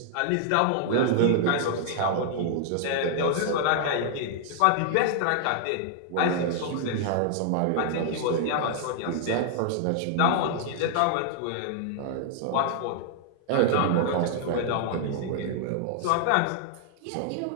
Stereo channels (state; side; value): different; both; correlation -0.01